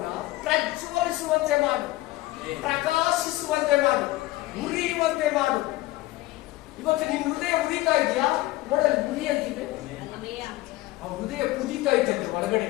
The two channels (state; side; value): quieter; right; 18.0 dB